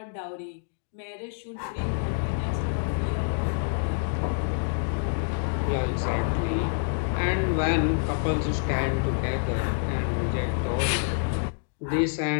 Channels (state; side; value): silent; right; digital silence